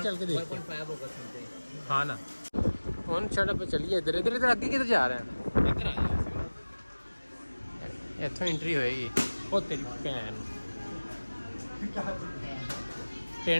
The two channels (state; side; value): inverted; both; correlation -1.00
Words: चल के देखते हैं। 1.5 होगा समथिंग। हाँ ना, कौन सड़क पे चलिए, इधर इधर इधर आगे किधर जा रहे हैं? इधर आ जाओ। इतों एंट्री होएगी। ओ तेरी भैन